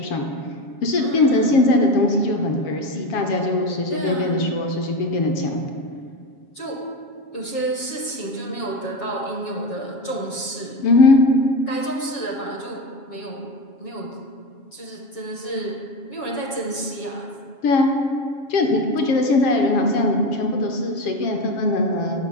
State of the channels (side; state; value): right; late; 7.3 ms